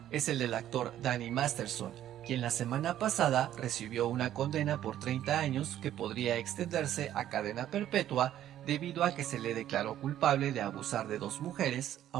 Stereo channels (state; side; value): quieter; left; 11.9 dB